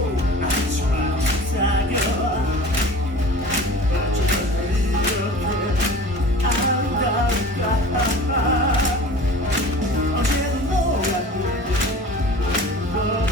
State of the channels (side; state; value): both; normal; correlation 0.40